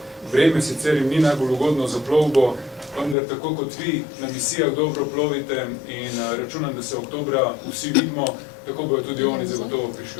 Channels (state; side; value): drops out; right; at 3.2 s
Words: Vreme sicer jim ni najbolj ugodno za plovbo, vendar tako kot vi na misijah dobro plovite in računam, da se oktobra vsi vidimo, tako bojo tudi oni zagotovo